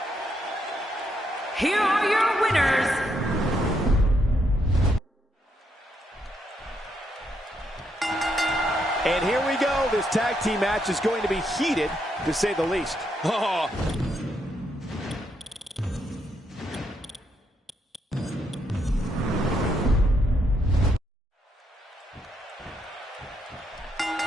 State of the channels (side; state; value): both; normal; correlation 0.77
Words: Here are your winners, and here we go. This tag team match is going to be heated, to say the least. Oh.